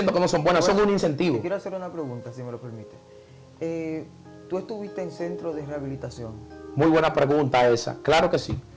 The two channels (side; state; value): both; identical; correlation 1.00